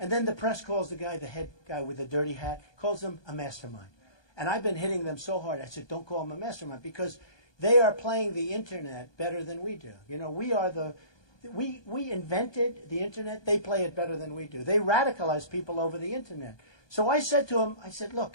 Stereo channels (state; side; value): late; right; 1.2 ms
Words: then the press calls the head guy with the dirty hat, calls him a mastermind. And I've been hitting them so hard. I said, don't call him a mastermind, because they are playing the internet better than we do. We invented the internet. They play it better than we do. They radicalize people over the internet. So I said to him,